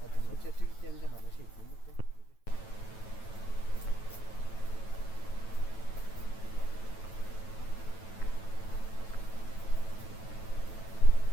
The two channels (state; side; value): late; right; 9.1 ms